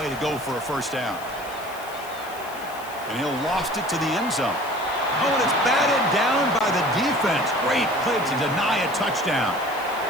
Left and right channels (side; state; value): left; noise; hiss, 18 dB below the sound